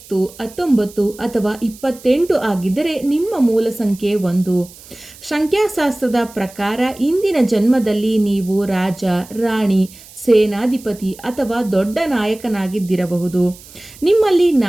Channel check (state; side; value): noise; right; hiss, 20 dB below the sound